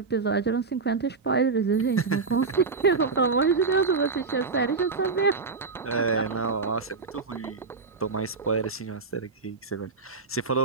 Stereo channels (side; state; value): left; quieter; 4.5 dB